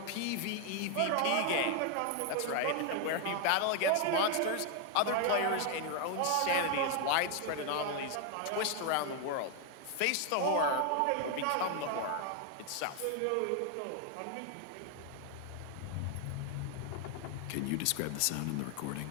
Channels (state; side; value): different; both; correlation 0.01